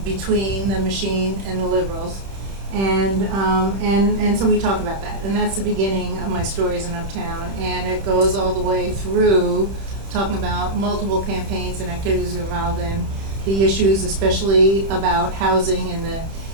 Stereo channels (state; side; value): late; left; 31 ms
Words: between the machine and the liberals. And so we talk about that, and that's the beginning of my stories in Uptown, and it goes all the way through talking about multiple campaigns and activities involved in the issues, especially about housing